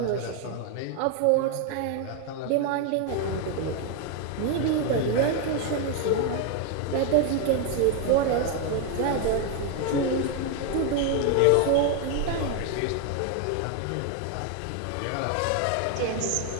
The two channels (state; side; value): different; both; correlation 0.01